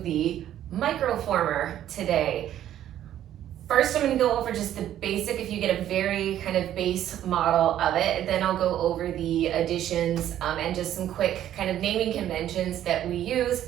the Microformer today. First, I'm gonna go over just the basic, if you get a very kind of base model of it, then I'll go over the additions and just some quick kind of naming conventions that we use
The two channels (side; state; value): left; quieter; 11.6 dB